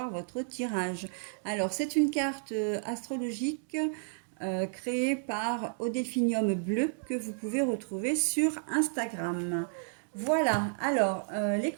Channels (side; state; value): left; silent; digital silence